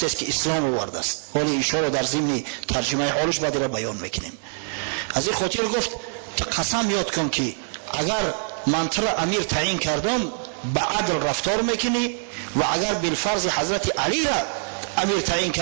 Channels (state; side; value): silent; left; digital silence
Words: است که اسلام آورده است. ولی این رو در ضمن ترجمه حالش بعد را بیان میکنیم. از این خاطر گفت تو قسم یاد کن که اگر من تو را امیر تعیین کردم به عدل رفتار میکنی و اگر بالفرض حضرت علی را امیر تعیین